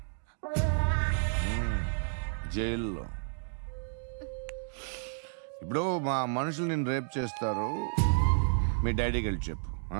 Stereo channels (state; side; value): silent; left; digital silence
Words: జైల్లో. ఇప్పుడు మా మనుషులు నేను రేప్ చేస్తారు, మీ డాడీకి వెళ్ళి చెప్పు.